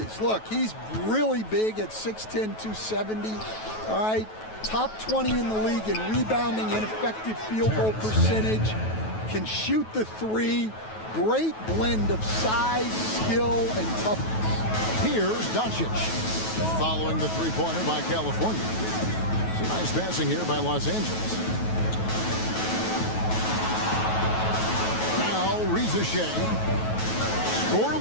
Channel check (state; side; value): late; right; 9.3 ms